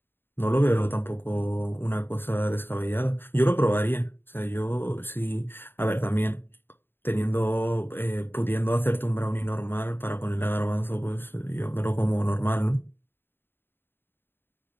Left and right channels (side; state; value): right; late; 0.10 ms